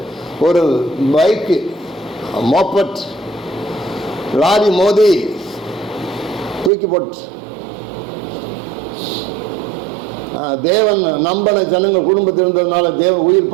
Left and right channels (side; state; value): left; drops out; at 6.7 s